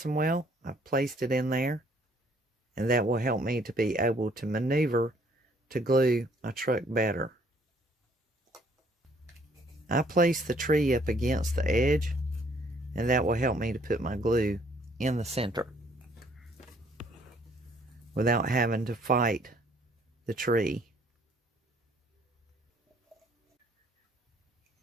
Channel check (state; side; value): normal; both; correlation 0.62